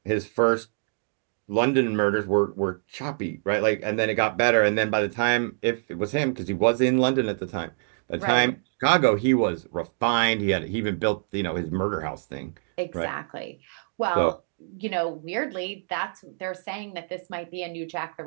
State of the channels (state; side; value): silent; left; digital silence